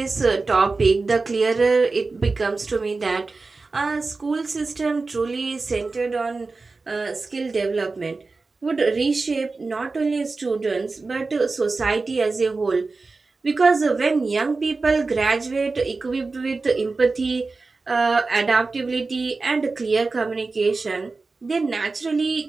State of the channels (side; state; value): left; quieter; 3.9 dB